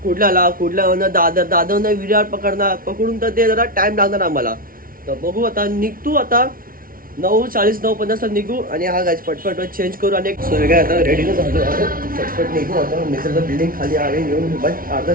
कुठल्याला दादरनं विरार पकडून तर ते जरा टाइम लागणार आम्हाला. तर बघू आता निघतो आता 9:40 9:50 निघू. आणि हा गाइस फटफट चेंज करू आणि काय आता रेडीला झालो. फटफट निघू आता. मित्राचं बिल्डिंग खाली आहे येऊन बट अर्धा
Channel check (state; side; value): late; left; 0.42 ms